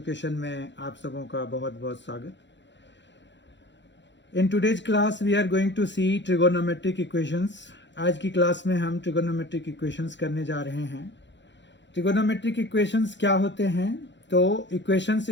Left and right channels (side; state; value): right; late; 0.52 ms